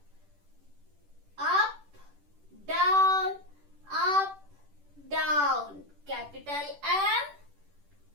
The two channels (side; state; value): left; late; 10 ms